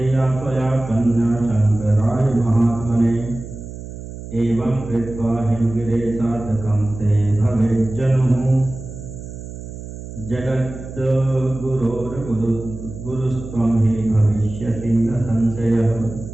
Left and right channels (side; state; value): right; noise; hum, 11 dB below the sound